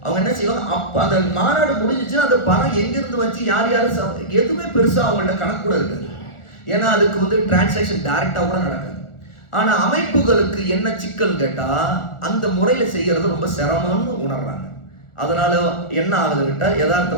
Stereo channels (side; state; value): right; late; 1.4 ms